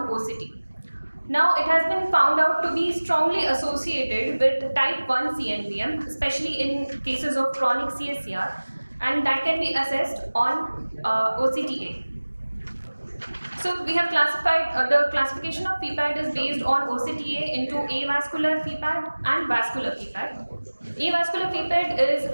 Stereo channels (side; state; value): both; inverted; correlation -1.00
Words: OCT. Now, it has been found out to be strongly associated with type 1 CNVM, especially in cases of chronic CSCR, and that can be assessed on OCTA. So we have classified, the classification of FEPAD is based on OCTA into avascular FEPAD and vascular FEPAD. Avascular FEPAD